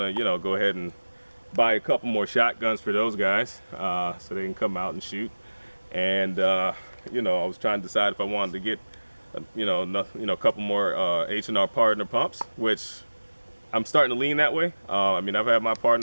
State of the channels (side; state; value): both; inverted; correlation -1.00